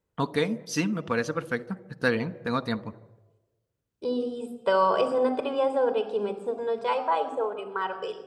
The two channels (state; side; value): identical; both; correlation 1.00